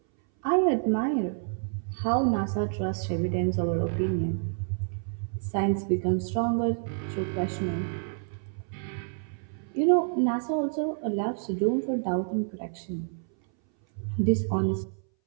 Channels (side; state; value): left; silent; 59 dB below the other